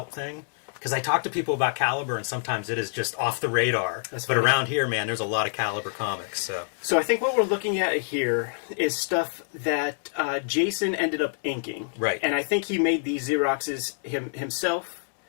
thing. Because I talk to people about Caliber, and sometimes it is just off the radar. That's but funny. around here, man, there's a lot of Caliber comics. So I think what we're looking at here is stuff that Jason ended up inking. Right. And I think he made these Xeroxes himself.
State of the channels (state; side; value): silent; right; digital silence